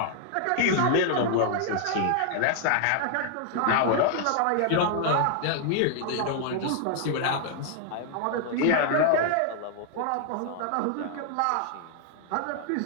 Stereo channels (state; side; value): different; both; correlation 0.00